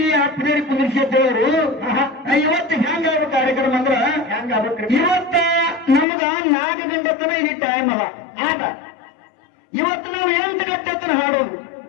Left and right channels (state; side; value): drops out; right; at 6.1 s